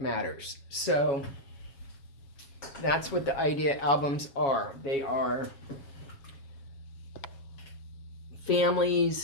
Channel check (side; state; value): right; late; 7.3 ms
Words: So that's what the idea albums are. They are